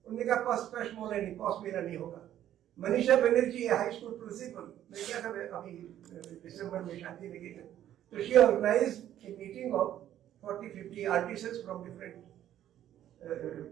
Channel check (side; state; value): left; quieter; 11.7 dB